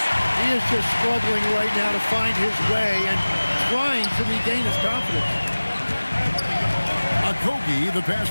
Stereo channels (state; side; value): inverted; both; correlation -1.00